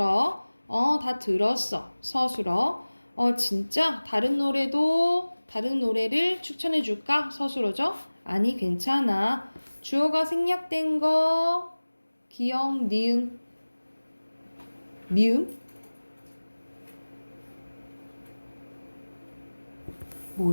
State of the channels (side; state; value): both; inverted; correlation -1.00